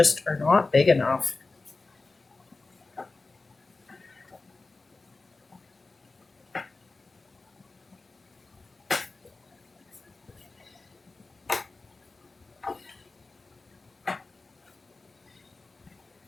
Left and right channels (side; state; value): right; quieter; 3.6 dB